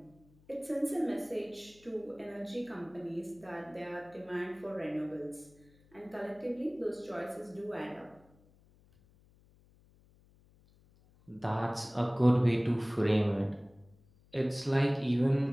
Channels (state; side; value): noise; left; hum, 29 dB below the sound